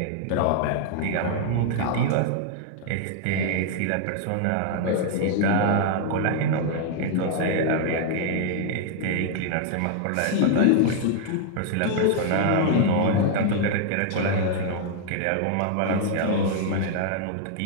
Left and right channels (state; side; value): different; both; correlation 0.00